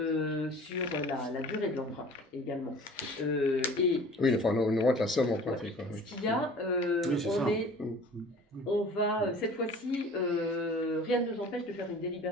sur la durée de l'emprunt également. Oui, enfin, on augmente la somme empruntée. Quoi, oui. Ce qu'il y a, on va, cette fois-ci, rien ne nous empêche de faire une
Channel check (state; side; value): normal; both; correlation 0.45